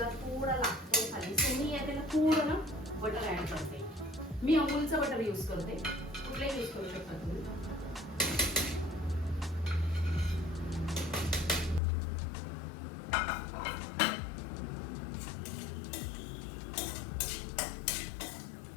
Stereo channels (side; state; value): right; drops out; at 11.8 s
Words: थोडा लागतो खाली, सो मी यात थोडं ना बटर ऍड करते. मी अमूलचं बटर यूज करते, कुठलंही यूज करू शकता तुम्ही.